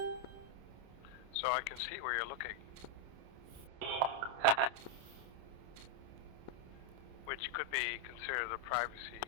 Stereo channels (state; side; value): late; left; 29 ms